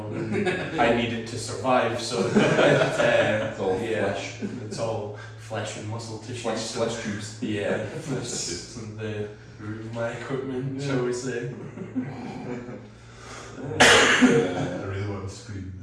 and I need it to survive. So It's all flesh. It's all flesh and muscle tissue. Flesh tubes. Yeah, that's the root of my equipment, shall we say? I really want to scream.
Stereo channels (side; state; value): both; identical; correlation 1.00